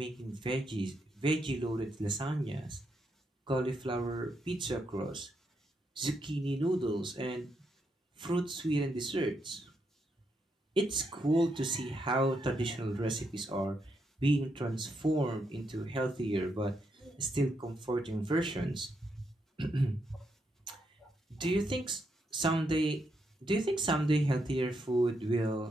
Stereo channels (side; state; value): both; normal; correlation 0.80